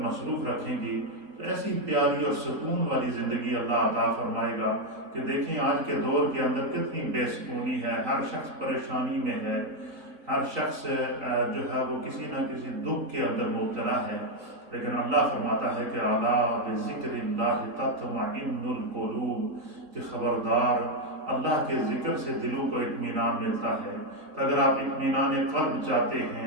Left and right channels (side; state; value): left; late; 4.3 ms